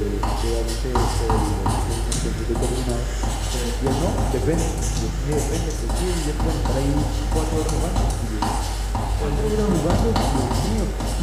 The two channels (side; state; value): both; identical; correlation 1.00